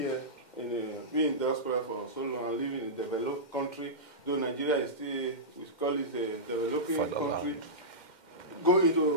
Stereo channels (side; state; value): right; late; 2.1 ms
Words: being in diaspora for so long, living in a developed country, though Nigeria is still, we call it a developing country. Go